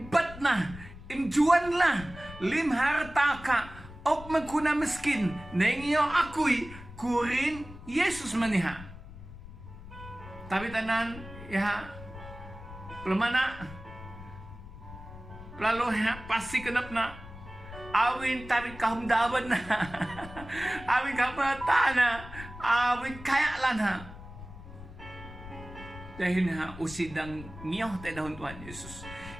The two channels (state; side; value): noise; left; rumble, 15 dB below the sound